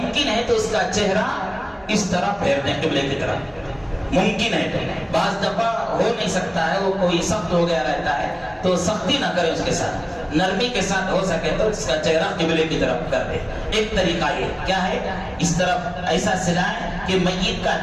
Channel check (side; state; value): both; identical; correlation 1.00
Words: ہے تو اس کا چہرہ اس طرح پھیر دیں قبلے کی طرف، ممکن ہے تو۔ بعض دفعہ ہو نہیں سکتا ہے، وہ کوئی سخت ہو گیا رہتا ہے تو سختی نہ کرے، اس کے ساتھ نرمی کے ساتھ ہو سکے تو اس کا چہرہ قبلے کی طرف کر دے۔ ایک طریقہ یہ کیا ہے، اس طرف ایسا سلائیں کہ میت کا